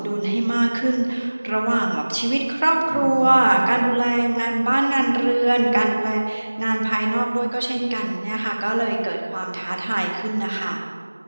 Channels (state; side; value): inverted; both; correlation -1.00